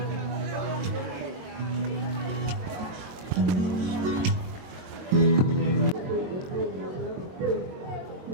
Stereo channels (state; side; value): late; left; 22 ms